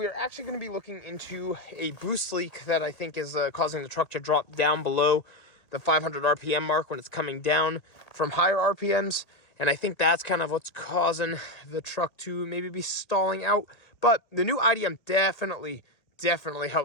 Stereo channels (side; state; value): right; late; 1.9 ms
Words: are actually going to be looking into a boost leak that I think is causing the truck to drop down below the 500 RPM mark when it's coming down from higher RPMs. And I think that's kind of what's causing the truck to maybe be stalling out. But the new IDM definitely